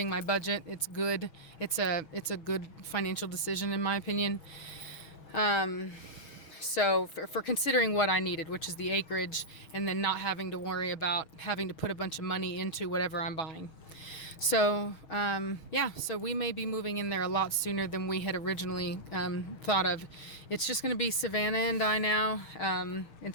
my budget. It's good. It's a good financial decision in my opinion. So for considering what I needed, which is the acreage, and then not having to worry about having to put a bunch of money into whatever I'm buying. So yeah, so we may be moving in there a lot sooner than we had originally thought of. It's just going to be Savannah and I now,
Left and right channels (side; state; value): right; late; 6.5 ms